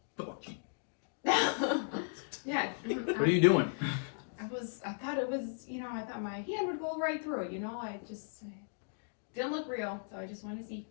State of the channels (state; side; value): silent; right; digital silence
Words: Fuck you. Yeah. What are you doing? I thought it was, I thought my hand would go right through it, I just didn't look real, so I just want to see.